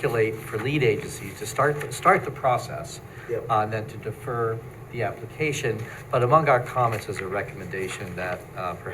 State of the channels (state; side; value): identical; both; correlation 1.00